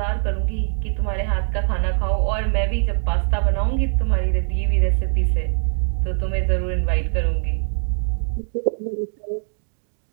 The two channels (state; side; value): silent; left; digital silence